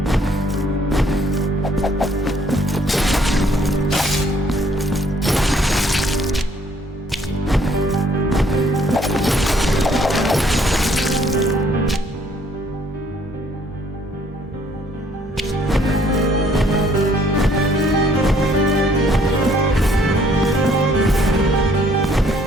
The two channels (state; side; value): normal; both; correlation 0.63